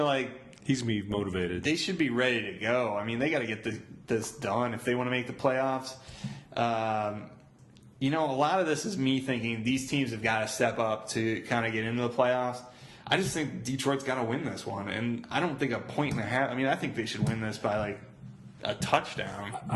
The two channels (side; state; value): both; identical; correlation 1.00